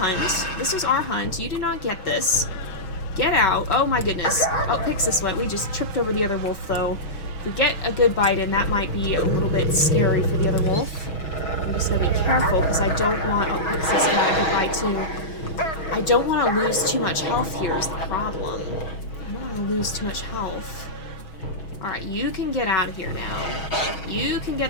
This was our hunt. You do not get this. Get out. Oh my goodness. Oh, Pyxis went. We just tripped over the other wolf though. If we get a good bite in, that might be a little bit scary for the other wolf. I'm just gonna be careful because I don't want... Oh, Pyxis got a good bite too. I don't want to lose too much health here is the problem. I don't want to lose too much health. Alright, you can get out of here now. You can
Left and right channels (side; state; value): right; late; 6.3 ms